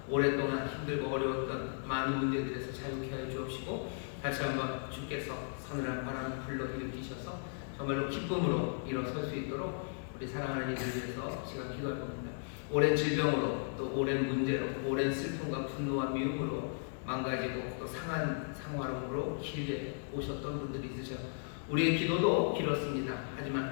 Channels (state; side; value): silent; right; 54 dB below the other